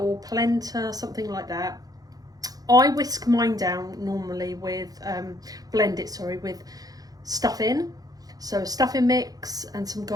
polenta, something like that. I whisk mine down normally with, with stuffing. So a stuffing mix and some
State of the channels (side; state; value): left; late; 0.18 ms